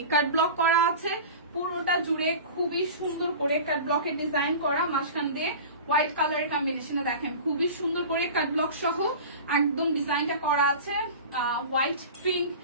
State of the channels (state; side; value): inverted; both; correlation -0.35